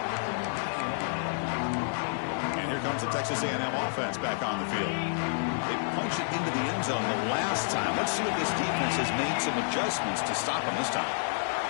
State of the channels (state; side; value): silent; right; digital silence